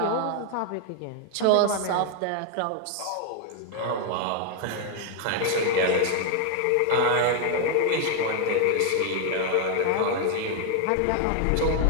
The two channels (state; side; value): different; both; correlation 0.01